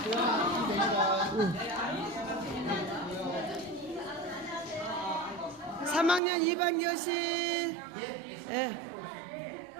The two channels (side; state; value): left; drops out; at 6.2 s